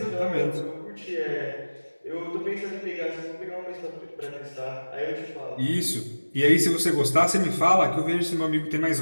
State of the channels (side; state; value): both; inverted; correlation -1.00